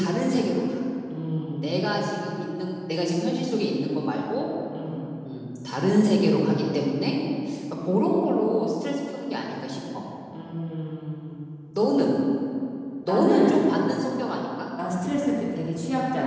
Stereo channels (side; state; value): both; identical; correlation 1.00